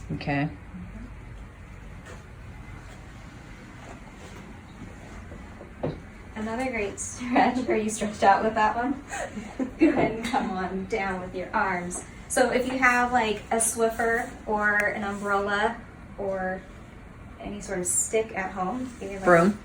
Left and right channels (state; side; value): identical; both; correlation 1.00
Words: Okay. Another great stretch. Are you stretched out with that one? Go ahead and come on down with your arms. So if you have like a Swiffer or an umbrella or any sort of stick at home, like